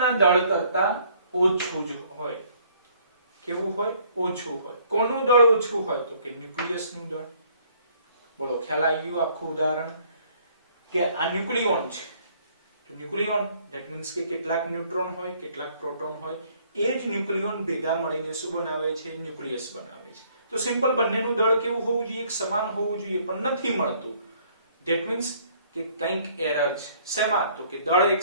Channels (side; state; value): both; inverted; correlation -0.62